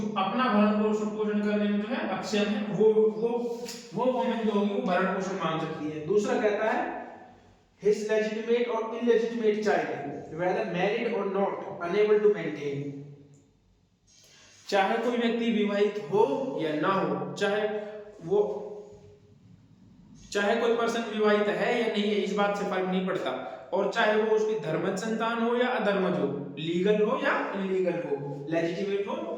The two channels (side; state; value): both; identical; correlation 1.00